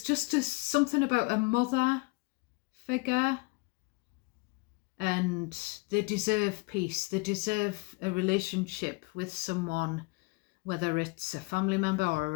just something about a mother figure, and they deserve peace. They deserve a relationship with someone, whether it's a family member or a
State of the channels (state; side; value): quieter; right; 27.1 dB